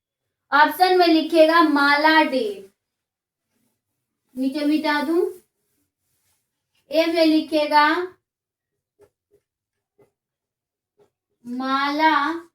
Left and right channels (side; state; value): both; identical; correlation 1.00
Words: ऑप्शन में लिखिएगा माला डी, नीचे मिटा दूं। ए में लिखिएगा माला